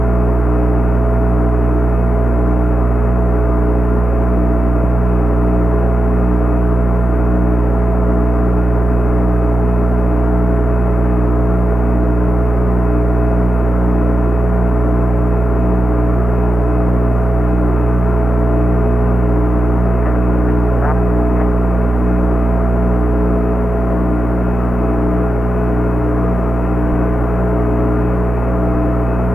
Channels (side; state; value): right; noise; hum, 24 dB below the sound